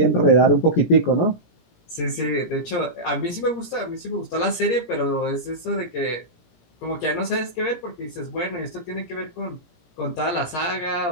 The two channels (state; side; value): late; right; 17 ms